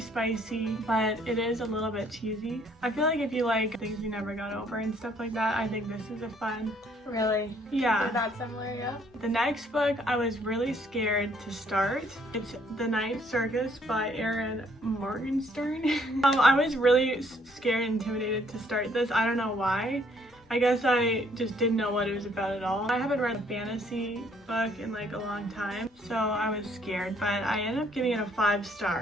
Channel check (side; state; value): both; normal; correlation 0.65